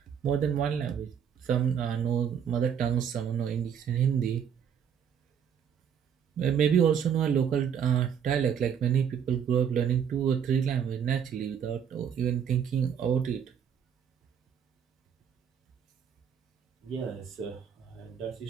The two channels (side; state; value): left; quieter; 8.0 dB